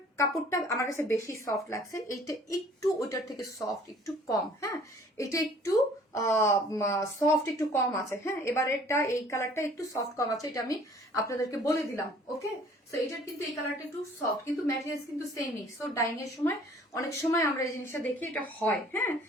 কাপড়টা আমার কাছে বেশি সফট লাগছে, এইটা একটু ওইটার থেকে সফট একটু কম। হ্যাঁ, এটা একটু সফট একটু কম আছে। হ্যাঁ, এবারেরটা এই কালারটা একটু সফট কম আছে, এটা আমি আপনাদেরকে বলে দিলাম। ওকে, সো এটার কিন্তু এই কালারটা একটু সফট, কিন্তু ম্যাটেরিয়ালস কিন্তু সেমই। সো ডাইং এর সময় অনেক সময় আমরা এই জিনিসটা দেখি, এটা হয়। হ্যাঁ,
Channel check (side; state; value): both; normal; correlation 0.54